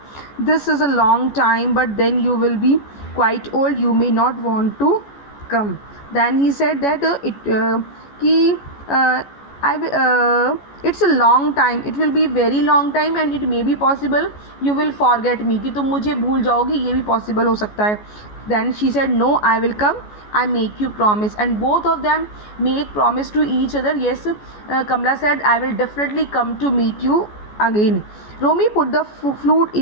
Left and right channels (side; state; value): right; late; 14 ms